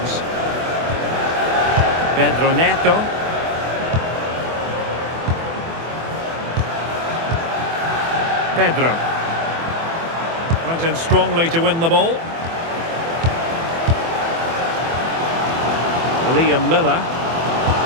Pedro Neto. Pedro. Went in strongly to win the ball. Liam Miller.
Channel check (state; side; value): late; left; 24 ms